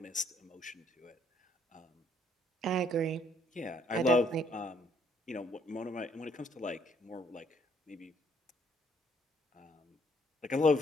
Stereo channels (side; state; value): both; normal; correlation 0.67